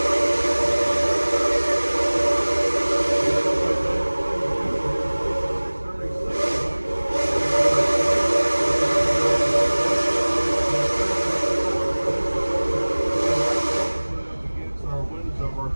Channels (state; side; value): inverted; both; correlation -1.00